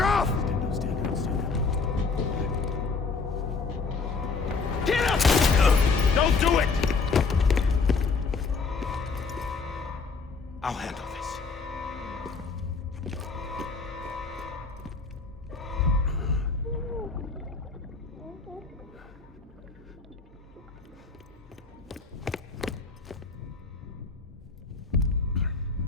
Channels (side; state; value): right; quieter; 4.5 dB